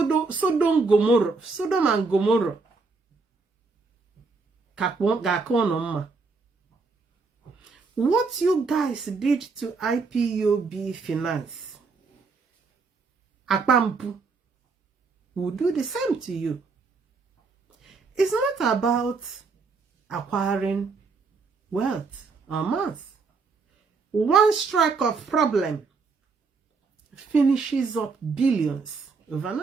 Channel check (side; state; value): left; quieter; 4.4 dB